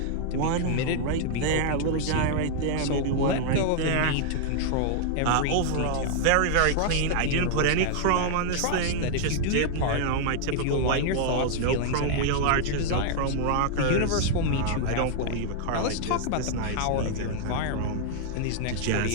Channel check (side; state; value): both; different; correlation 0.00